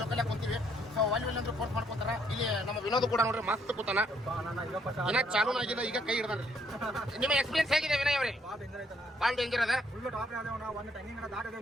ಜೊಕಾಲಿ ಕುಂತೀವಿ ಸೊ ಅಲ್ಲಿ ಅಂದ್ರೆ ಫೋರ್ಸ್ ಮಾಡ್ಕೊತಾರ ಇಲ್ಲಿ ನಮ್ಮ ವಿನೋದ್ ಕೂಡ ನೋಡ್ರಿ ಮಸ್ತ್ ಕೂತಾನ ಇನ್ನ ಚಾಲೂ ಆಗಿಲ್ಲ ಈಗ ಕೈ ಹಿಡ್ದಾನ್ರಿ ನಿಮ್ಮ ಎಕ್ಸ್ಪೀರಿಯನ್ಸ್ ಹೇಗಿದೆ ವಿನಯ್ ಅವ್ರಿ ಭಾಳ ಡೇಂಜರ್ ಅದ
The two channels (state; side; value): normal; both; correlation 0.69